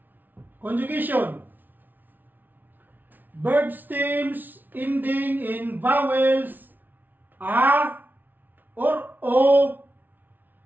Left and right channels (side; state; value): left; late; 0.086 ms